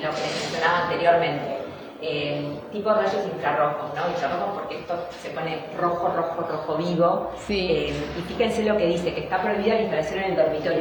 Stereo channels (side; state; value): both; identical; correlation 1.00